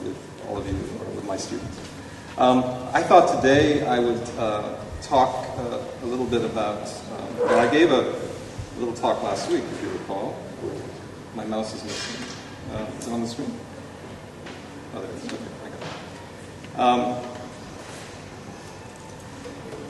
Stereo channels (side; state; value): both; identical; correlation 1.00